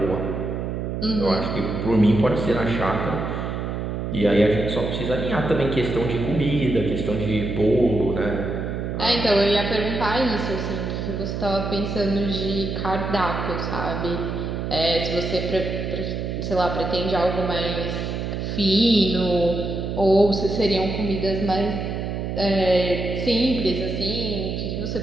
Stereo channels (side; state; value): right; noise; hum, 3 dB below the sound